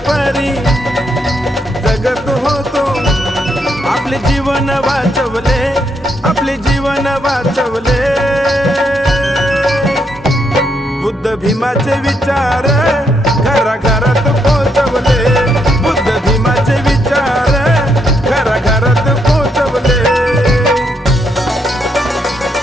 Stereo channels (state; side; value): normal; both; correlation 0.77